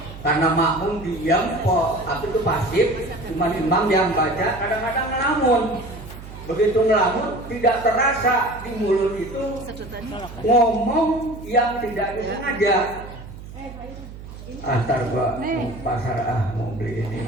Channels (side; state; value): right; noise; hum, 14 dB below the sound